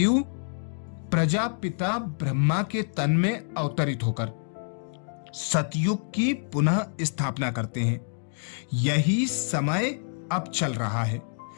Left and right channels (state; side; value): silent; right; digital silence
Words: प्रजापिता ब्रह्मा के तन में अवतरित होकर सतयुग की पुनः स्थापना करते हैं। यही समय अब चल रहा है।